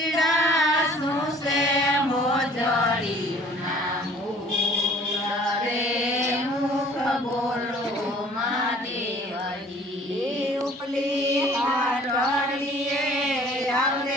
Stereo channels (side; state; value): both; normal; correlation 0.52